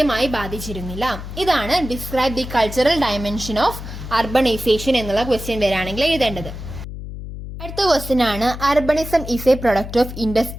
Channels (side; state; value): left; noise; hum, 10 dB below the sound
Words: ബാധിച്ചിരുന്നില്ല. ഇതാണ് describe the cultural dimension of urbanisation എന്നുള്ള ക്വസ്റ്റ്യൻ വരാണെങ്കിൽ എഴുതേണ്ടത്. അടുത്ത ക്വസ്റ്റ്യൻ ആണ് urbanism is a product of